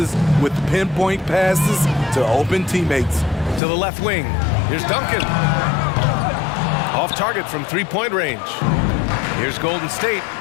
with pinpoint passes to open teammates. To the left wing. Here's Duncan. Off target from three-point range. Here's Golden State.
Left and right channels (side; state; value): right; drops out; at 3.6 s